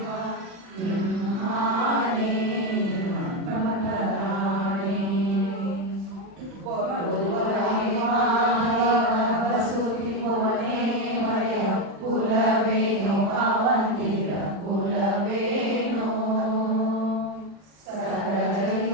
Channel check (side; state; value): left; late; 40 ms